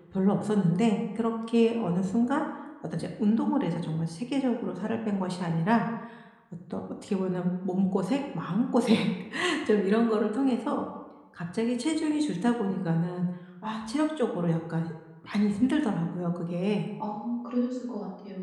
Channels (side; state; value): both; identical; correlation 1.00